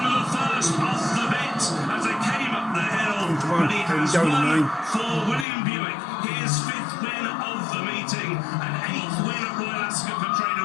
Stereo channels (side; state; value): right; drops out; at 5.5 s